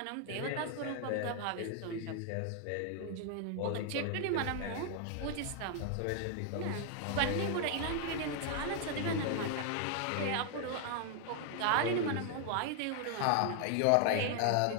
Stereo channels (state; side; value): different; both; correlation 0.00